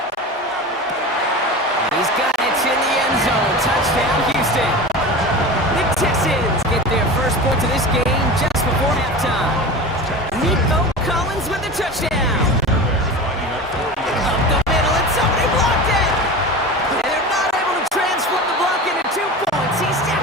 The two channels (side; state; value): both; normal; correlation 0.30